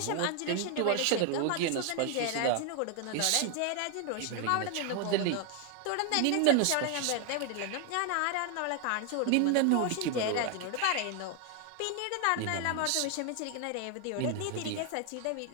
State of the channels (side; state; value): both; different; correlation 0.00